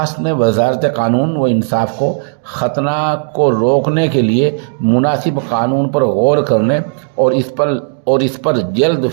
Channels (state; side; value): silent; left; digital silence